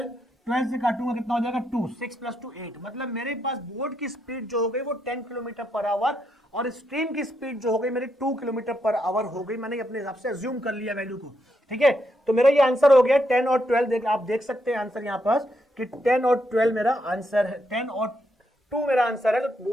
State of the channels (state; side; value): normal; both; correlation 0.79